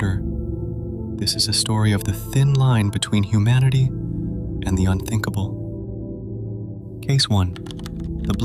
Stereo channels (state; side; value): identical; both; correlation 1.00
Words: This is a story of the thin line between humanity and the unthinkable. Case 1. The